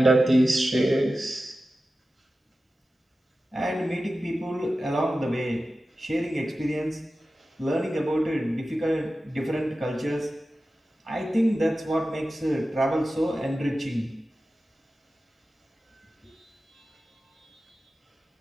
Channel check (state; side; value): normal; both; correlation 0.94